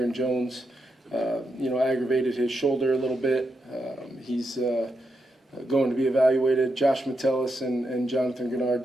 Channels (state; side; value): normal; both; correlation 0.84